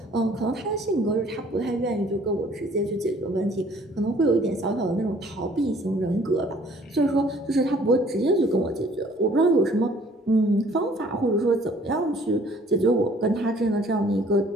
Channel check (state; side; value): normal; both; correlation 0.57